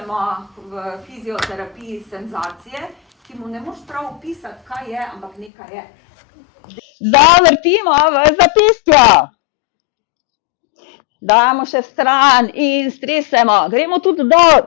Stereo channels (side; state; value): right; drops out; at 5.5 s